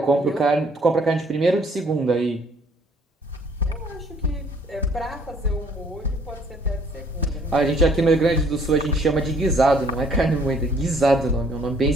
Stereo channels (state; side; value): normal; both; correlation 0.61